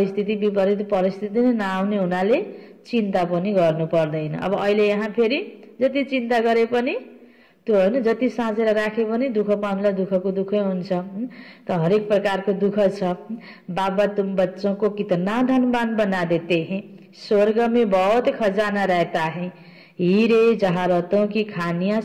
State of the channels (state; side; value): identical; both; correlation 1.00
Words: विपरीत परिस्थिति नै नआउने हुनाले चिन्ता पनि गर्नु पर्दैन। अब अहिले यहाँ फेरि जति चिन्ता गरे पनि त्यो हैन, जति साँचेर राखे पनि दुःख पाउनुलाई दुःखको दुःखै हुन्छ। त हरेक प्रकारको दुःख छ। बाबा तुम बच्चों को कितना धनवान बना देते हैं, स्वर्ग में बहुत खजाना रहता है, हीरे जवाहरातों की खानियां